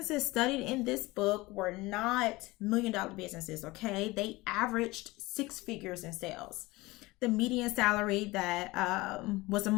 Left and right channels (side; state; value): right; quieter; 21.2 dB